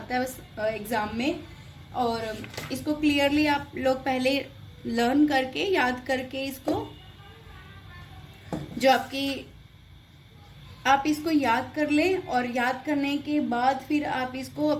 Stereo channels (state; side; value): identical; both; correlation 1.00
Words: है एग्जाम में, और इसको क्लियरली आप लोग पहले लर्न करके याद करके इसको, जो आप इसको याद कर लें, और याद करने के बाद फिर आप इसको